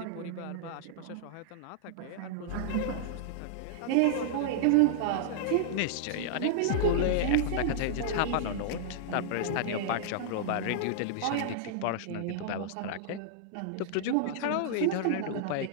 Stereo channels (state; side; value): different; both; correlation -0.01